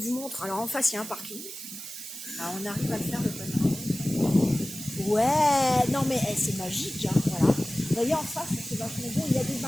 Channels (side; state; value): right; noise; hiss, 10 dB below the sound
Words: montre. Alors en face, il y a un parking. Alors on arrive à le faire, le panorama. Ouais, non mais c'est magique, voilà. Vous voyez en face, c'est vachement beau, il y a des